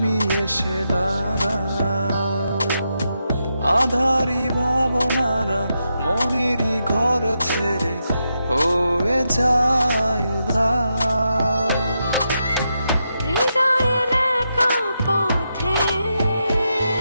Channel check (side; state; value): both; inverted; correlation -0.84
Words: এসে দাঁড়াও, আধারি ভাবনারা মনেরই ঘর ছেড়ে হয়ে যায় উধার। হৃদয়ের একা পথে